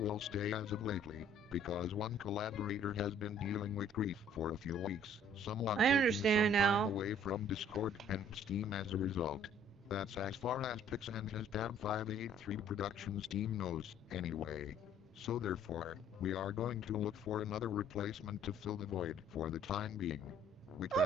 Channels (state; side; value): normal; both; correlation 0.58